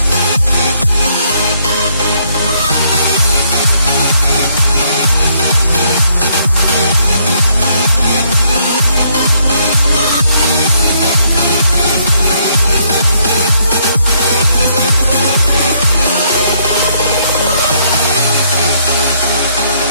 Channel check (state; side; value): inverted; both; correlation -0.70